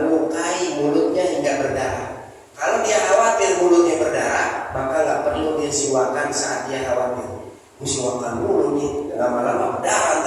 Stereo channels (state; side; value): identical; both; correlation 1.00